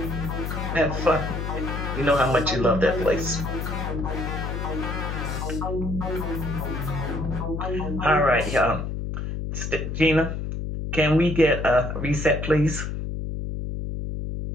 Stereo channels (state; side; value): noise; left; hum, 4 dB below the sound